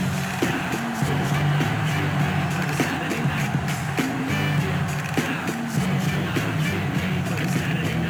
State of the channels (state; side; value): identical; both; correlation 1.00